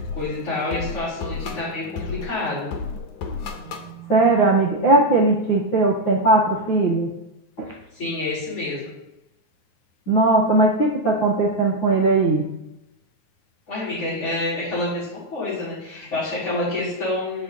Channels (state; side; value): late; right; 9.5 ms